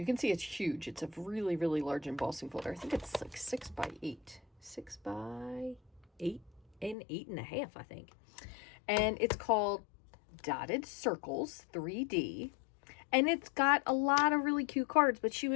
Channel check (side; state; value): right; drops out; at 7.0 s